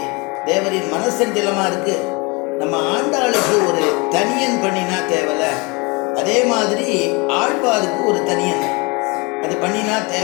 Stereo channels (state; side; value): quieter; right; 28.0 dB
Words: தேவரின் மனசஞ்சலமாக இருக்கு, நம்ம ஆண்டாளுக்கு ஒரு தனியன் பண்ணினா தேவலை, அதே மாதிரி ஆழ்வாருக்கு ஒரு தனியன் அது பண்ணினா